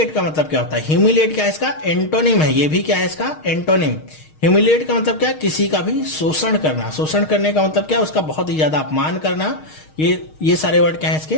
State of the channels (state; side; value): late; right; 6.4 ms